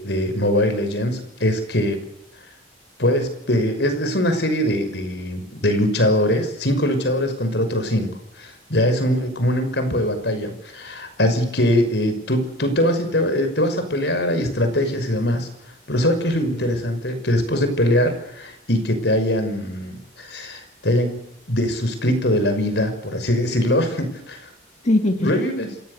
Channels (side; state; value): both; normal; correlation 0.40